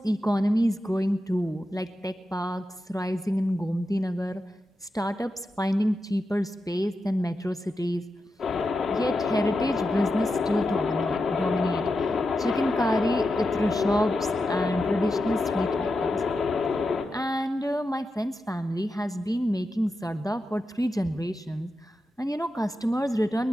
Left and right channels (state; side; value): normal; both; correlation 0.89